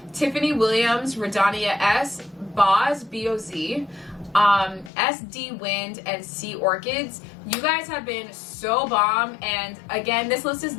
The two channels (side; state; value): right; drops out; at 4.9 s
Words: Tiffany Williams, Radania S, Boz, B-O-Z, SD Wind, and Sea Orchids. You guys have been so bomb, and again, this list is